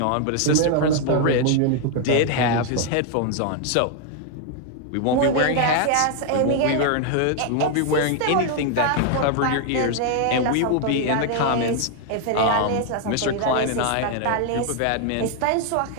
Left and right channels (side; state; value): both; different; correlation 0.00